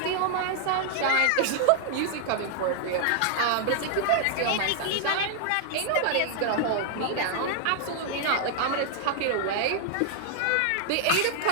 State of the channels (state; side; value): different; both; correlation 0.00